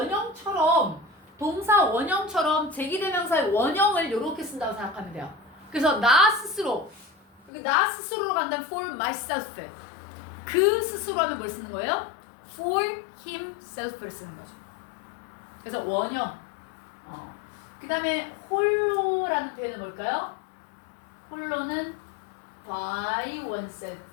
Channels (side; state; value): right; drops out; at 7.5 s